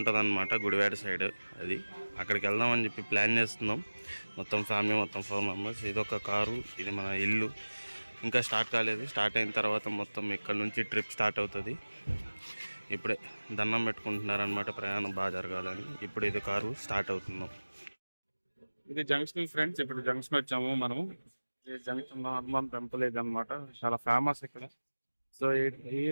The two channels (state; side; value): inverted; both; correlation -1.00